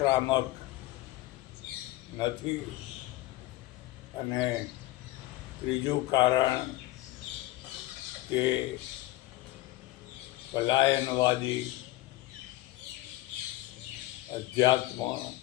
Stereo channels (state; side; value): quieter; right; 17.7 dB